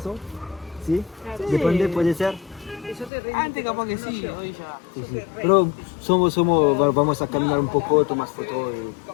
¿sí? Depende, puede ser. Antes capaz que sí, hoy ya. Sí, sí. Pero vamos a caminar un poco, tomas fotos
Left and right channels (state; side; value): drops out; right; at 3.1 s